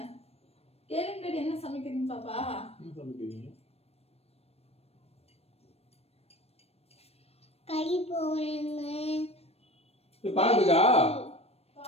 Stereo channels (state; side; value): late; right; 0.29 ms